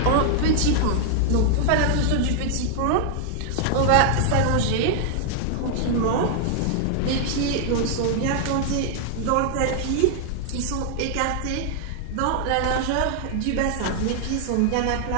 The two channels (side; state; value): both; different; correlation 0.00